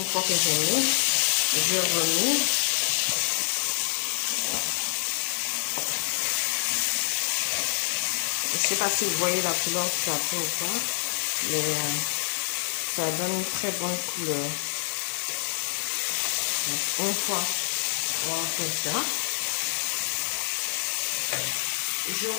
fois que j'ai mis, je remets. Je sais pas si vous voyez la couleur que ça fait ou pas, mais ça donne une très bonne couleur. Donc, une fois on fait ça, je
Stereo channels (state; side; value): silent; right; digital silence